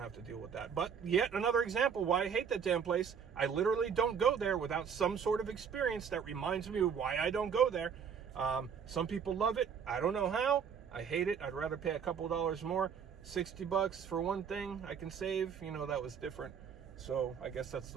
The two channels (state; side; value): quieter; left; 7.0 dB